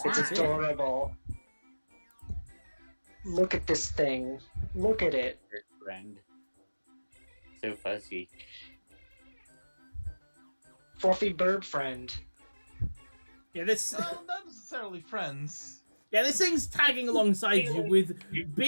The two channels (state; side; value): inverted; both; correlation -1.00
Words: It's it's adorable. Look at this thing. Look at it. Your friend. So fuzzy. Fluffy bird friend. Yeah, this. Well, not necessarily friends. Yeah, this thing's tagging alongside you with